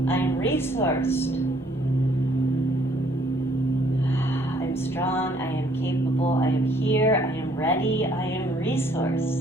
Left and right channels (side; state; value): both; normal; correlation 0.63